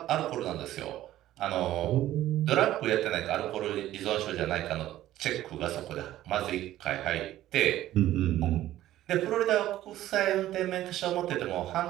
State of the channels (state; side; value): quieter; left; 14.0 dB